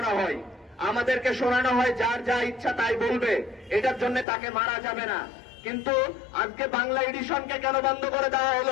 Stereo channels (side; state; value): right; drops out; at 4.2 s